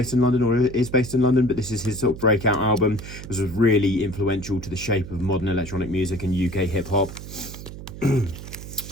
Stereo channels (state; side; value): noise; right; hum, 12 dB below the sound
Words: in London, or is based in London, but this is his sort of breakout album. This was really influential to the shape of modern electronic music and UK hip-hop.